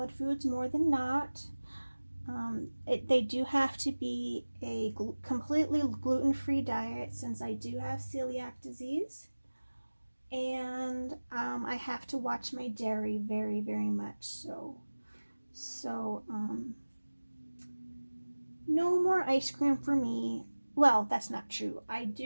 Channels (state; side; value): inverted; both; correlation -1.00